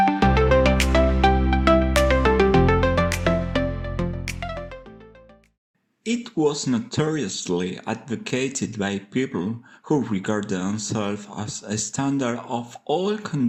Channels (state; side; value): identical; both; correlation 1.00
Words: It was notoriously advocated by people who regard themselves as a standard of all